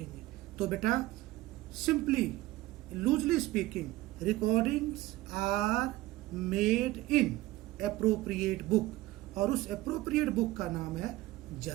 तो बेटा simply loosely speaking, recordings are made in appropriate book, और उस एप्रोप्रिएट बुक का नाम है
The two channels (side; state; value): left; quieter; 17.9 dB